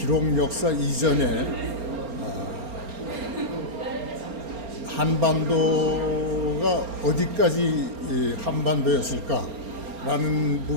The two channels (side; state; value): left; late; 4.3 ms